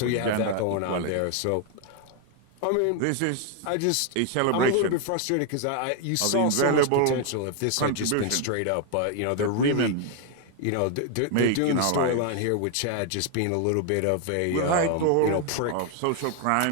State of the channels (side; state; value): both; different; correlation 0.00